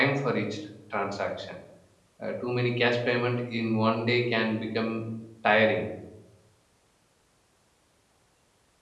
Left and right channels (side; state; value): both; identical; correlation 1.00